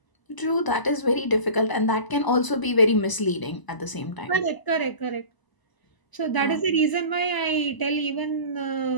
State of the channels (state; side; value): late; right; 1.0 ms